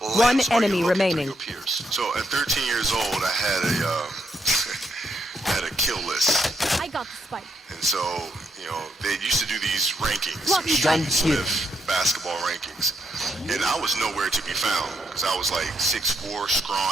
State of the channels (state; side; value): normal; both; correlation 0.77